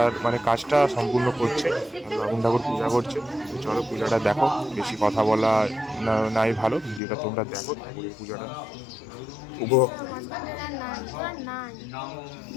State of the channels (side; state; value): right; drops out; at 7.0 s